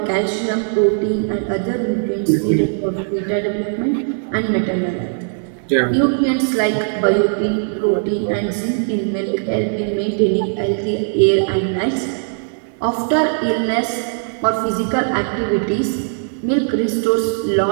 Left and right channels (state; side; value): silent; left; 67 dB below the other